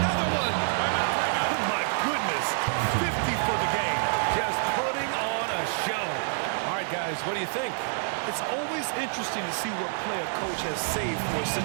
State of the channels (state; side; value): silent; left; digital silence